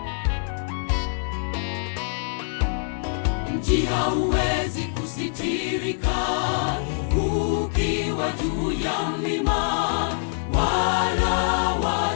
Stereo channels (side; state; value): right; silent; digital silence